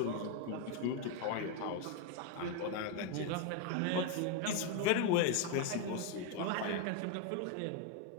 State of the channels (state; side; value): different; both; correlation 0.01